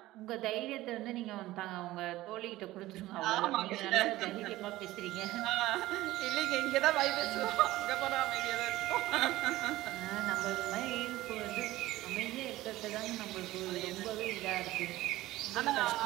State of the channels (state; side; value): quieter; left; 16.9 dB